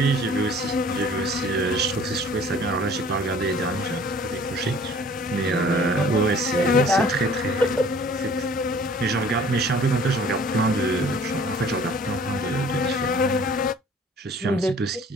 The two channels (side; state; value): both; normal; correlation 0.51